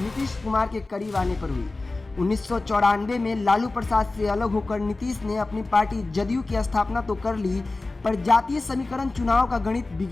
नीतीश कुमार के करीब आने पर हुई। 1994 में लालू प्रसाद से अलग होकर नीतीश ने अपनी पार्टी जदयू की स्थापना तो कर ली, पर जातीय समीकरण चुनाव का गणित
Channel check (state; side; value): quieter; right; 3.3 dB